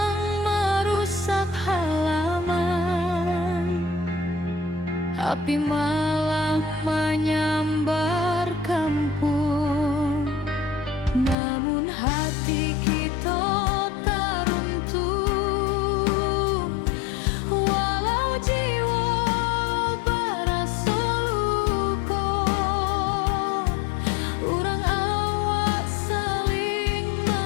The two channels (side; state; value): right; drops out; at 11.4 s